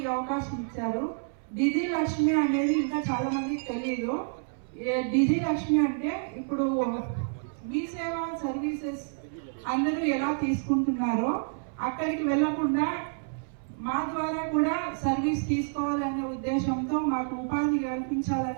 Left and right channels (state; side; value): silent; left; 58 dB below the other